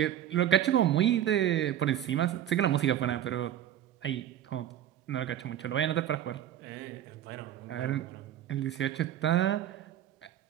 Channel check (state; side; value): quieter; left; 11.1 dB